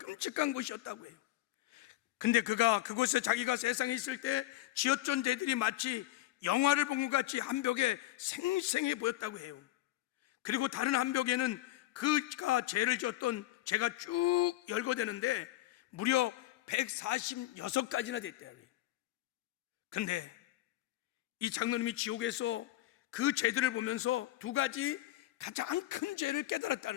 곳이었다고 해요. 근데 그가 그곳에 자기가 세상에 있을 때 지었던 죄들이 마치 영화를 본 것 같이 한 벽에 생생해 보였다고 해요. 그리고 다른 한 벽에는 그가 죄를 지었던 죄가 쭉 열거되는데 무려 146가지나 됐대요. 근데 이 장로님이 지옥에서 그 죄들을 보면서 두 가지 가장 큰 죄를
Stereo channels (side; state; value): right; quieter; 16.0 dB